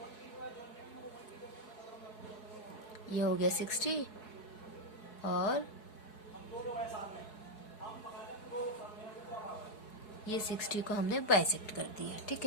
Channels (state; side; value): late; right; 4.7 ms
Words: ये हो गया 60 और ये 60 को हमने बाइसेक्ट कर दिया, ठीक